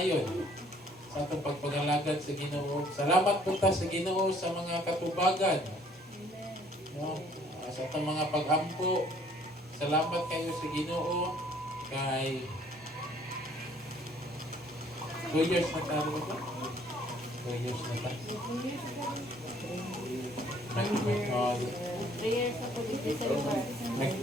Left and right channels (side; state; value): both; normal; correlation 0.60